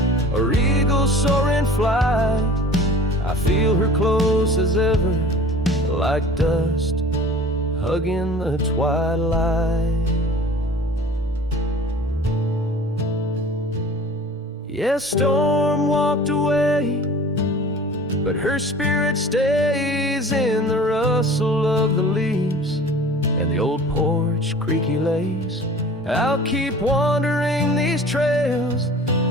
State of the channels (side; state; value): both; normal; correlation 0.43